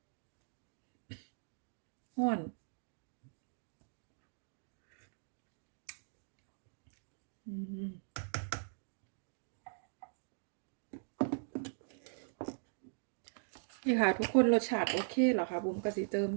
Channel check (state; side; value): silent; left; digital silence